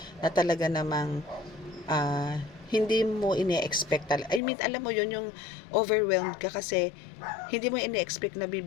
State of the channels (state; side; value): drops out; right; at 4.4 s